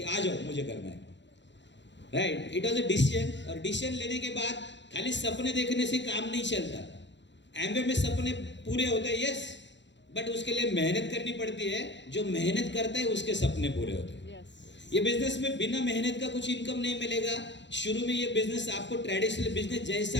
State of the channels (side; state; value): right; late; 0.52 ms